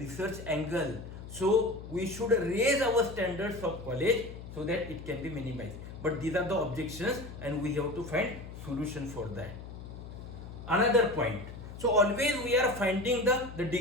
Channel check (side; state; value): left; noise; hum, 12 dB below the sound